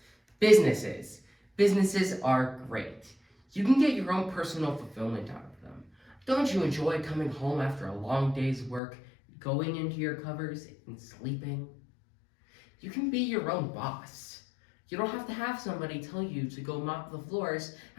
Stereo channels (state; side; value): drops out; right; at 8.8 s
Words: Businesses. Businesses are great. You can get your own personal fulfillment out of them. Don't you enjoy coming home after a long day's work, going into your covers and sleeping? You can be your own boss. You don't have to have somebody tell you to go mop the floors